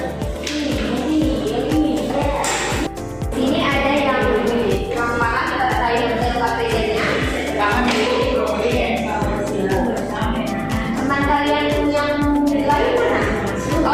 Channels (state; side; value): identical; both; correlation 1.00